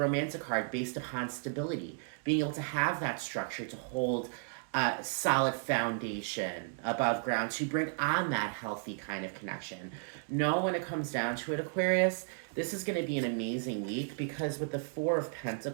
card based upon stability. Being able to have that structure to hold a solid foundation above ground to bring on that healthy kind of connection. Know when it comes down to it, Aquarius, this is going to be an amazing week because with the Four of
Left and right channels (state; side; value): silent; left; digital silence